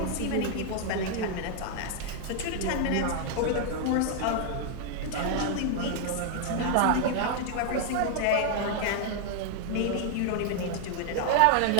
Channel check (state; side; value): different; both; correlation 0.00